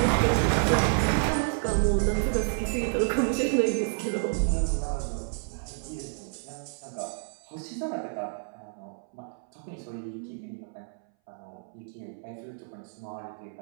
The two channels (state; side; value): silent; left; 58 dB below the other